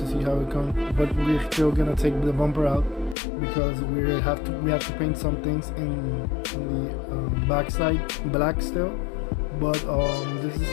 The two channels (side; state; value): right; drops out; at 3.2 s